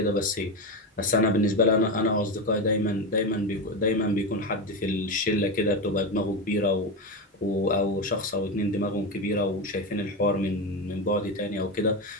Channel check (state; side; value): normal; both; correlation 0.16